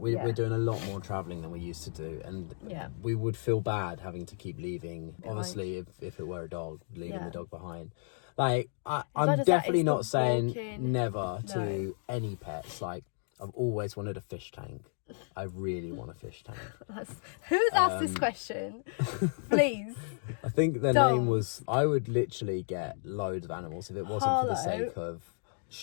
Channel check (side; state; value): right; silent; digital silence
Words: we're doing a lot more travelling than we used to do. And we would feel bad having to keep leaving. Behind. Obviously, if it were a dog, leaving the dog behind. Like, I'm definitely not saying never to any pets. Like, I've always wanted a fish tank. I really want a fish tank. Who's asked this question? Please. I think the name was, I would literally get loads of animals if it wasn't for the sake of